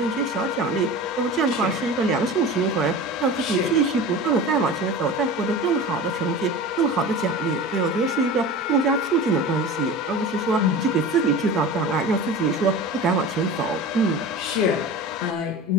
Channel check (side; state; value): both; normal; correlation 0.33